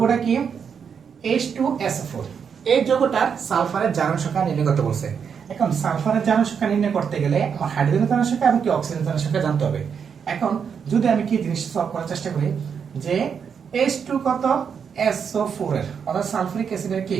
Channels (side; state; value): left; quieter; 6.9 dB